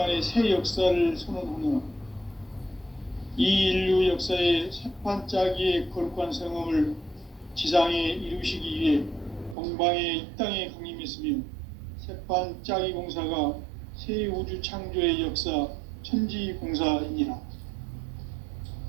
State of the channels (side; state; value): left; drops out; at 9.6 s